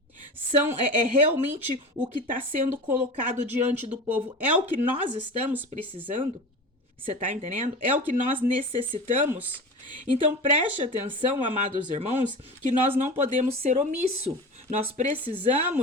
É realmente o que está sendo colocado diante do povo? É o que nós estamos precisando? Você tá entendendo? É o que nós necessitamos? Então preste atenção, amados irmãos, que nós não podemos ser omisso. Nós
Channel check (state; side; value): normal; both; correlation 0.31